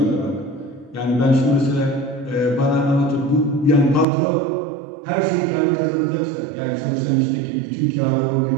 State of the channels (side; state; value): left; drops out; at 4.0 s